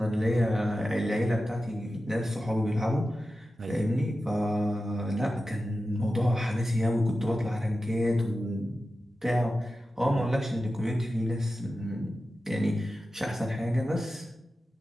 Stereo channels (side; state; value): both; normal; correlation 0.93